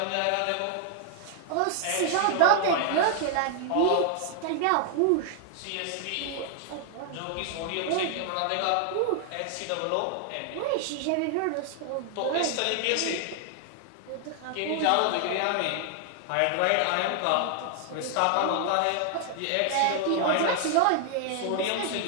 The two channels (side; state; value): both; different; correlation 0.00